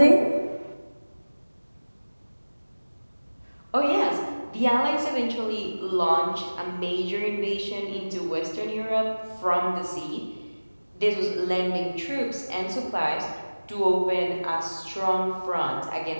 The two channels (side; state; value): both; inverted; correlation -1.00